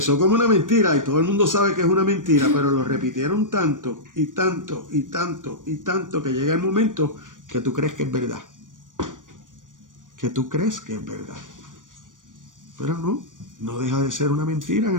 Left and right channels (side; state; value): left; late; 0.88 ms